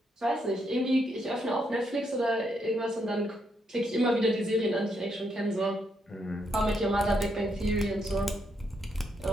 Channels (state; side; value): normal; both; correlation 0.77